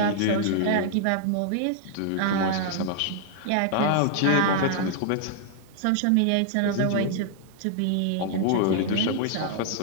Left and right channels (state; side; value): different; both; correlation -0.01